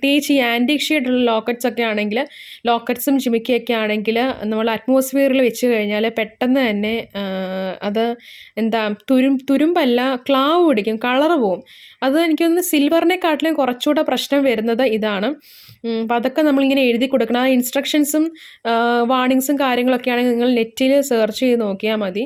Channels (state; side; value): identical; both; correlation 1.00